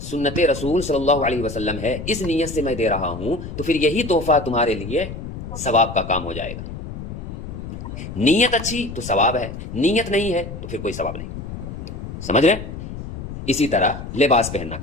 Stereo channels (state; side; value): noise; left; rumble, 9 dB below the sound